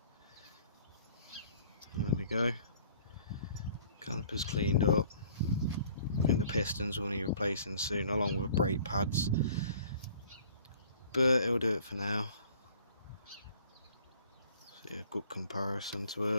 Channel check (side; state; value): both; inverted; correlation -0.54